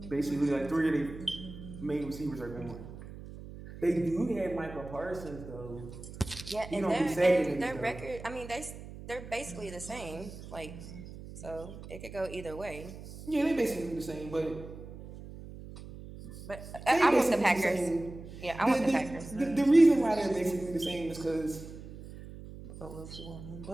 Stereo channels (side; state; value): right; noise; hum, 13 dB below the sound